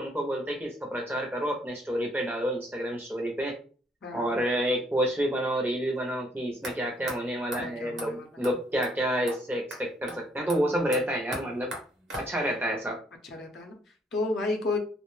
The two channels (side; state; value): both; normal; correlation 0.67